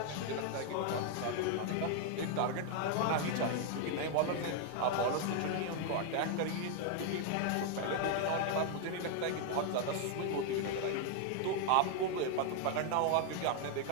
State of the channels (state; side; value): different; both; correlation 0.00